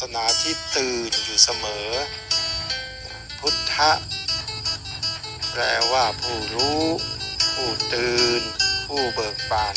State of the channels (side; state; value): both; identical; correlation 1.00